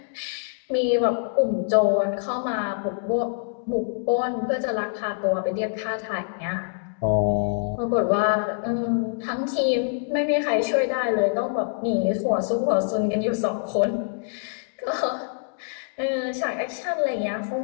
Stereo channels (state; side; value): silent; right; digital silence